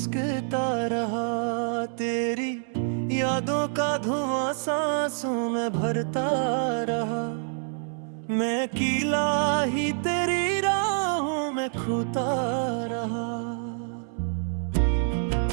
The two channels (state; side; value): silent; left; 60 dB below the other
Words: रहा। तेरी यादों का धुआं सांसों में भरता रहा। मैं अकेला ही तेरी राहों में खोता रहा।